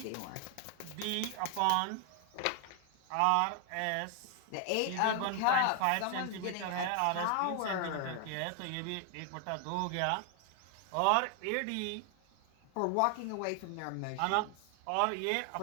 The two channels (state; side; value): different; both; correlation 0.00